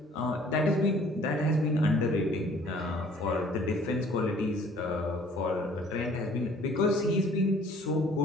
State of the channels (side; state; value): both; normal; correlation 0.55